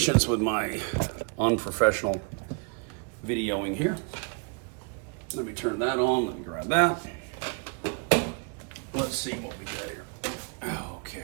with my unprofessional videoing here. Let me turn that on. Let me grab that. Let's see what we got here.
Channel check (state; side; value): quieter; left; 36.1 dB